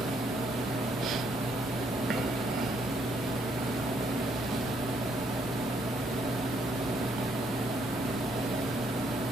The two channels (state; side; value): normal; both; correlation 0.70